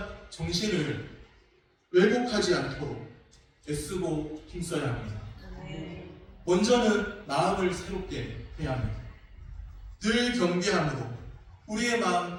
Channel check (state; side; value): identical; both; correlation 1.00